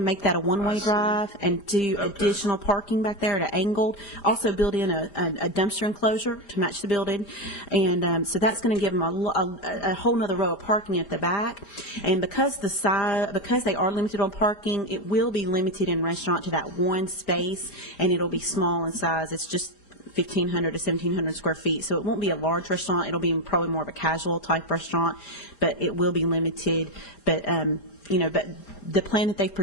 make that a one-way drive and do additional parking back there at an angle. Also build in a dumpster enclosure to match the building. And so that's going to give them a whole nother row of parking at the back. And because they are limited on parking, it will be limited in restaurant to that one space, and it'll be small in size. It's just 1,500 to 1,700 square feet. So it won't be a large restaurant. It'll be probably more of a casual type restaurant, but it will be limited. But, but the plan that they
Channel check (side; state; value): right; late; 5.0 ms